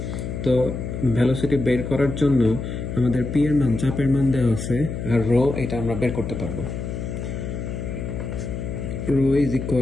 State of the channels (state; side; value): noise; left; hum, 5 dB below the sound